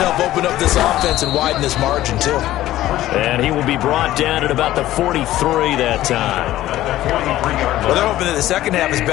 open up this offense and widen this margin, too. And he will be brought down at about the 43 that time. Well, they're hoping that the second half is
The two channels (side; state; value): right; quieter; 14.6 dB